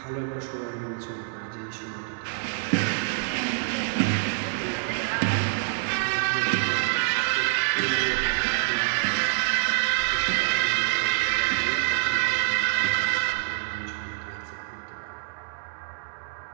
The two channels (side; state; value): left; silent; digital silence